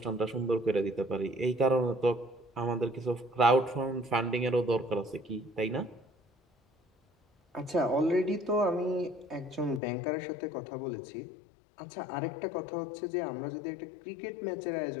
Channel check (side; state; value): right; drops out; at 9.8 s